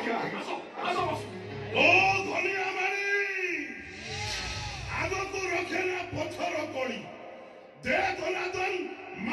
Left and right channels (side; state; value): both; identical; correlation 1.00